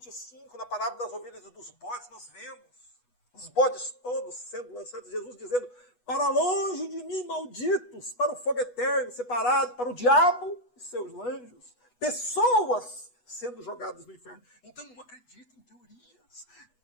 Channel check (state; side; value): late; right; 8.1 ms